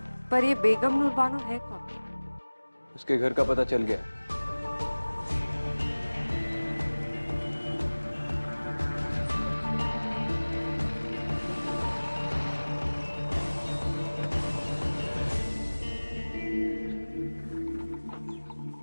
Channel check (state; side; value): inverted; both; correlation -1.00